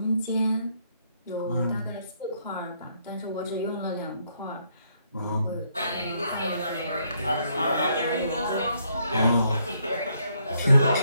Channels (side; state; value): both; inverted; correlation -0.72